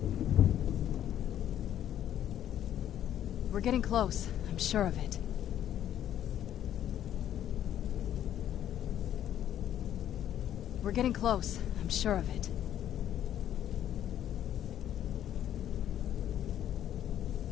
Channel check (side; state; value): right; quieter; 11.0 dB